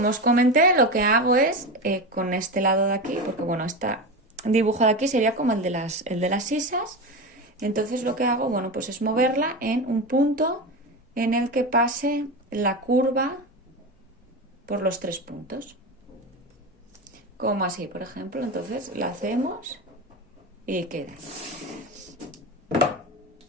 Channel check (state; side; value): normal; both; correlation 0.21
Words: os comenté, lo que hago es con este lado de aquí, porque bueno, este dibujo de aquí sería como el de las sisas. Entonces lo que hago, bueno, pues es moverla en un punto en el que pase la curva por los 3 puntos. Como así, por ejemplo. Entonces la hacemos y queda.